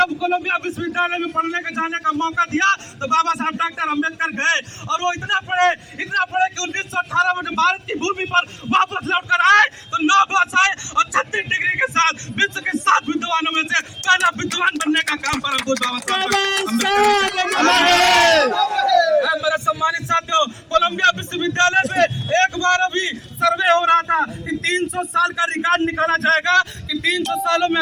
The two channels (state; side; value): identical; both; correlation 1.00